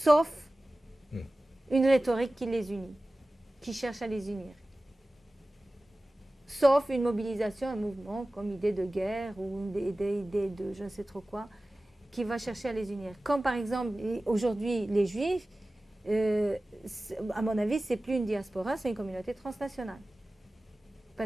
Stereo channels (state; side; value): normal; both; correlation 0.97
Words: une rhétorique qui les unit, qui cherche à les unir. Sauf une mobilisation, un mouvement comme idée de guerre ou une idée de je ne sais trop quoi, qui va chercher à les unir. Comme par exemple, aujourd'hui, les Juifs, à mon avis, ce n'est plus une diaspora, c'est une communauté transnationale.